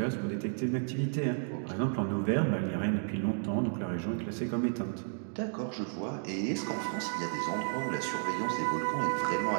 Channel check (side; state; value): left; silent; 56 dB below the other